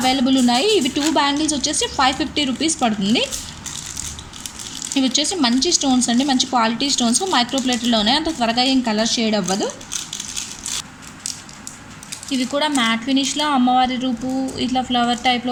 ఉన్నాయి. ఇవి 2 బ్యాంగిల్స్ వచ్చేసి 550 రూపీస్ పడుతుంది. ఇవి వచ్చేసి మంచి స్టోన్స్ అండి, మంచి క్వాలిటీ స్టోన్స్. మైక్రోప్లేట్లోనే అంత త్వరగా ఏం కలర్ షేడ్ అవ్వదు. ఇవి కూడా మ్యాట్ ఫినిష్లో అమ్మవారి రూపు ఇట్లా ఫ్లవర్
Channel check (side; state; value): both; identical; correlation 1.00